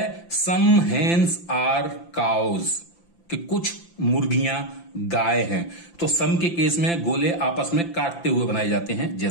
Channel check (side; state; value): right; late; 5.8 ms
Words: सम हेन्स आर काउज, कि कुछ मुर्गियां गाय हैं। तो सम के केस में गोले आपस में काटते हुए बनाए जाते हैं,